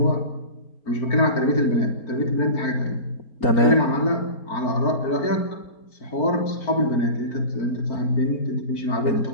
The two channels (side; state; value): right; late; 4.3 ms